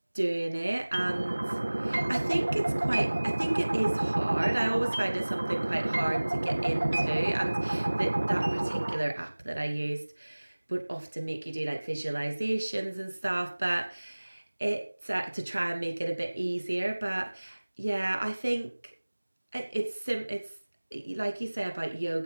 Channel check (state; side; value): inverted; both; correlation -1.00